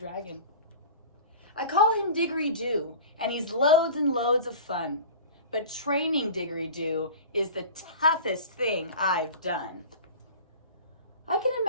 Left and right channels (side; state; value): both; inverted; correlation -0.37